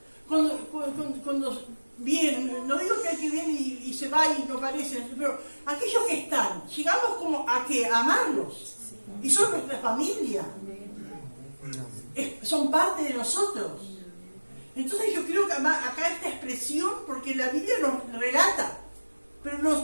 Cuando vienen, no digo que hay que viene y se va y no aparecen, pero aquellos que están, llegamos como a que amarlos. Y son nuestra familia. Son parte de nosotros. Entonces yo creo que acá esta expresión, porque la Biblia nos relata, pero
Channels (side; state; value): both; inverted; correlation -1.00